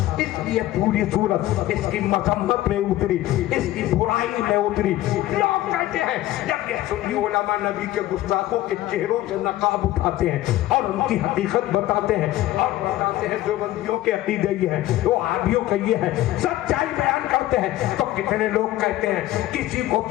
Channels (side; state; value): right; quieter; 15.2 dB